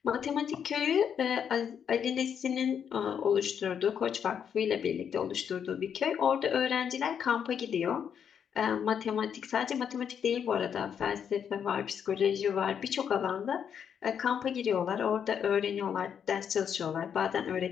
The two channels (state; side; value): quieter; right; 7.9 dB